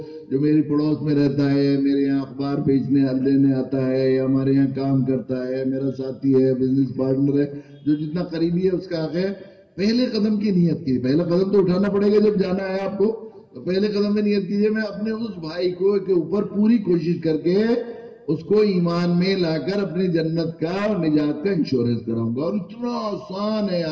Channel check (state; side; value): identical; both; correlation 1.00